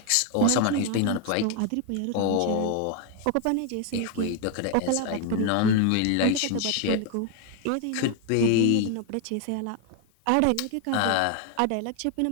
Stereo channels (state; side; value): different; both; correlation 0.01